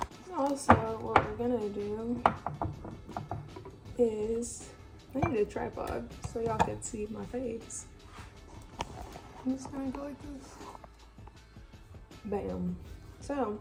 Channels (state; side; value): identical; both; correlation 1.00